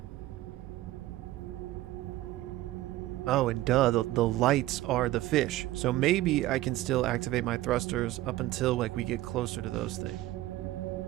Oh, and duh, the lights are the fish. So maybe I can still activate my thrusters up until like we get closer to those things.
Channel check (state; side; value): quieter; left; 16.2 dB